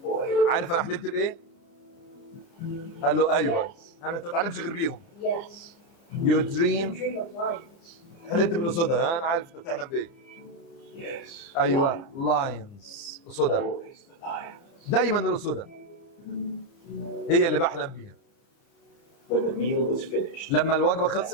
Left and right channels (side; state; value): right; late; 30 ms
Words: boy? عارف انا حلمت بايه؟ قال له ايوه. انا انت ما بتعلمش غير بيهم. Yes. يو You دريم. dream of lions. حلمت بالاسودة. انا عارف انت بتحلم بايه. Yes. ايوه، لاينز، اسودة. Always the lions. دايما الاسودة هي اللي بحلم بيها. When the meal was finished, لما الوجبه